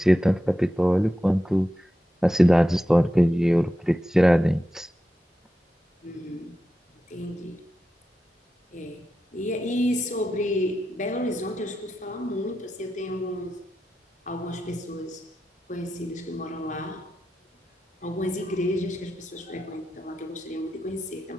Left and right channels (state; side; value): normal; both; correlation 0.90